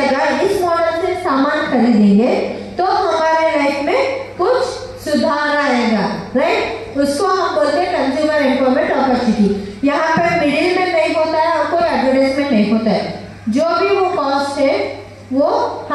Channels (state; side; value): identical; both; correlation 1.00